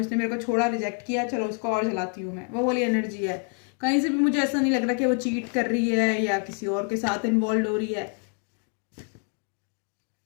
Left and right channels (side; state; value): right; quieter; 37.3 dB